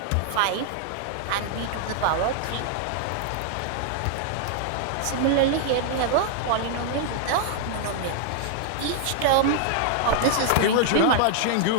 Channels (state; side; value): different; both; correlation 0.00